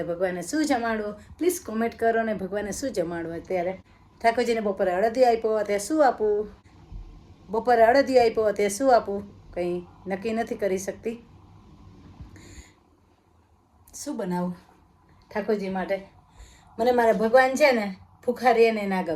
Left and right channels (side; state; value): both; identical; correlation 1.00